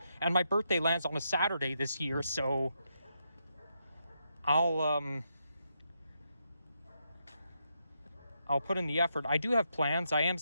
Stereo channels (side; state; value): both; inverted; correlation -0.81